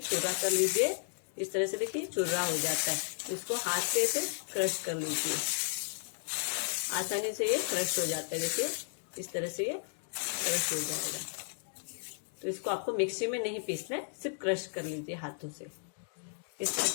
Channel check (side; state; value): right; silent; digital silence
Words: चुर्रा कर लीजिए। इस तरह से देखिए चुर्रा हो जाता है। इसको हाथ से ऐसे क्रश कर लीजिए, आसानी से ये क्रश हो जाता है। देखिए इस तरह से ये क्रश हो जाएगा। तो इसको आपको मिक्सी में नहीं पीसना है, सिर्फ क्रश कर लीजिए हाथों से। इस तरह